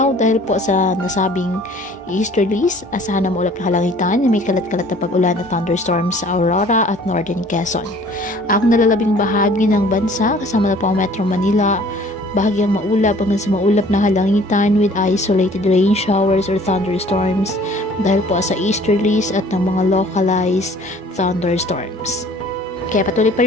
dahil po sa nasabing easterlies, asahan na maulap na kalangitan na may kalat-kalat na pag-ulan at thunderstorms sa Aurora at Northern Quezon. Ang nalalabing bahagi ng bansa, kasama na po ang Metro Manila, bahagyang maulap hanggang sa maulap na halangitan with isolated rain showers or thunderstorms dahil po sa easterlies at ng mga localized thunderstorms. Kaya patuloy pa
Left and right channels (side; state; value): both; normal; correlation 0.53